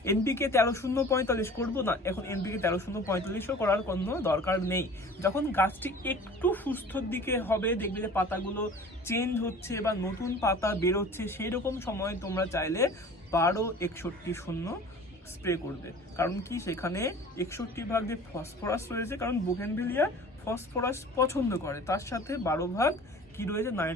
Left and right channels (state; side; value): normal; both; correlation 0.44